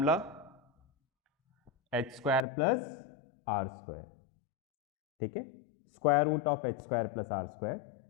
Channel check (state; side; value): drops out; right; at 2.5 s